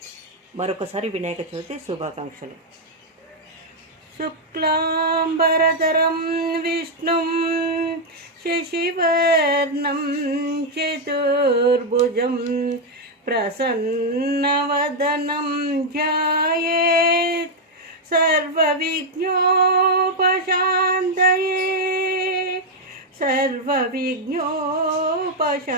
మరొకసారి వినాయక చవితి శుభాకాంక్షలు. శుక్లాంబరధరం విష్ణుం శశివర్ణం చతుర్భుజం ప్రసన్నవదనం ధ్యాయేత్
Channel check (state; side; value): normal; both; correlation 0.00